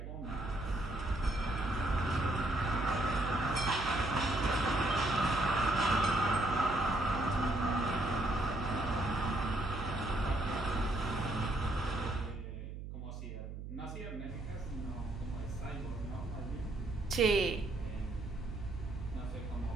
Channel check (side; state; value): right; noise; hum, 8 dB below the sound